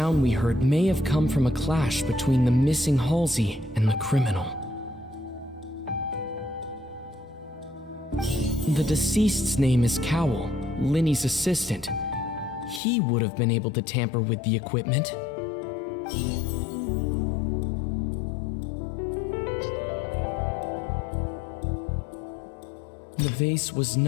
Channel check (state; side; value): drops out; right; at 12.8 s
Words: we heard may have come from a clash between the missing Halsey and the criminal. The deceased's name is Cowell, Linny's assistant. He would have been able to tamper with the equipment. The vase was